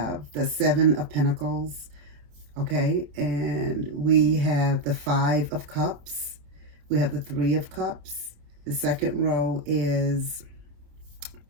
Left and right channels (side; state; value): left; late; 27 ms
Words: the Seven of Pentacles, okay? And we have the Five of Cups. We have the Three of Cups. The second row is